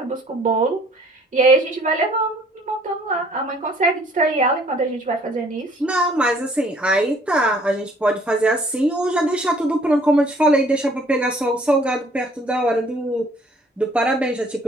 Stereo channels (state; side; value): normal; both; correlation 0.58